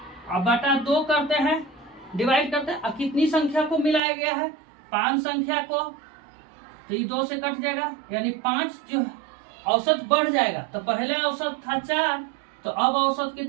अब बटा 2 करते हैं, डिवाइड करते हैं। अब कितनी संख्या को मिलाया गया है, 5 संख्या को, तो ये 2 से कट जाएगा, यानी 5 जो औसत बढ़ जाएगा। तो पहले औसत था 4, तो अब औसत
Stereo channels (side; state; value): left; drops out; at 4.0 s